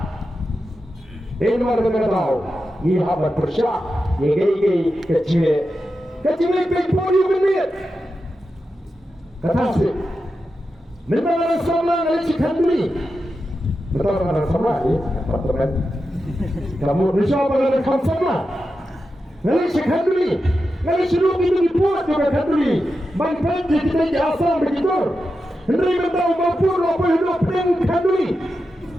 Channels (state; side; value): normal; both; correlation 0.90